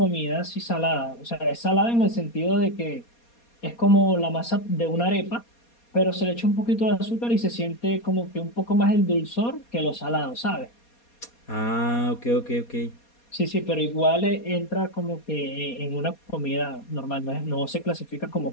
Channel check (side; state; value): right; late; 4.2 ms